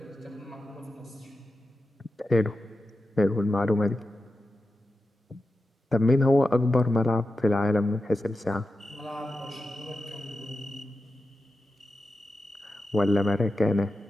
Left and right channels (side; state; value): both; normal; correlation 0.91